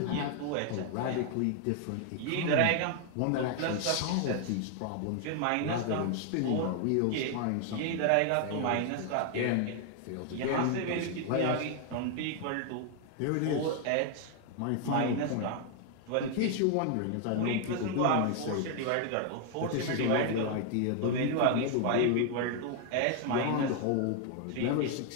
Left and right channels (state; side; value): different; both; correlation 0.00